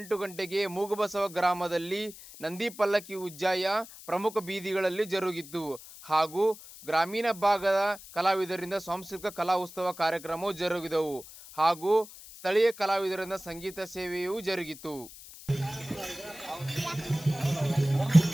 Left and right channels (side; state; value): left; noise; hiss, 17 dB below the sound